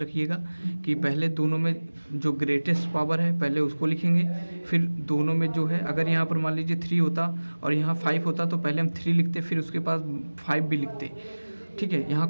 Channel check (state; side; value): inverted; both; correlation -1.00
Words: कि पहले दोनों में जो ग्रेटेस्ट पावर है पहले उसको लिखेंगे, फिर दोनों में जो है, अगर यहाँ पर मान लीजिए 3 होता और यहाँ 5 होता तो पहले हम 3 लिखते, फिर उसके पास 5 भी लिखते। ठीक है, यहाँ